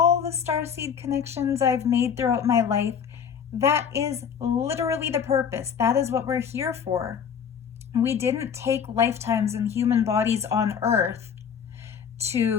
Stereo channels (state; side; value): quieter; right; 7.4 dB